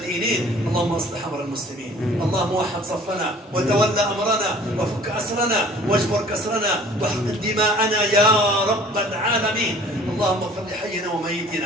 اللهم اصلح أمر المسلمين اللهم وحد صفنا وتولى أمرنا وفك أسرنا واجبر كسرنا واحقن دماءنا يا رب العالمين اللهم اغفر لحينا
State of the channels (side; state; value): both; normal; correlation 0.50